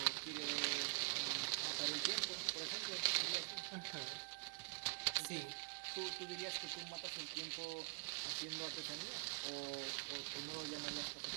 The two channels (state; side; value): quieter; left; 34.7 dB